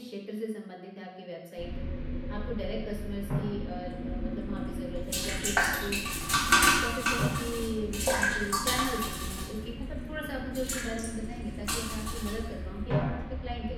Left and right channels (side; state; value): both; identical; correlation 1.00